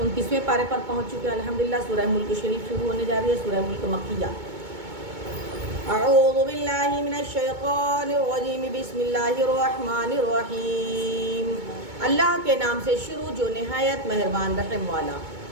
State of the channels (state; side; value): late; left; 2.2 ms